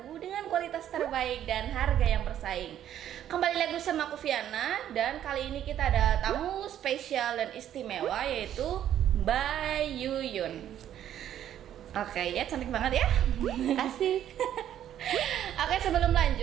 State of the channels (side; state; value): left; quieter; 10.9 dB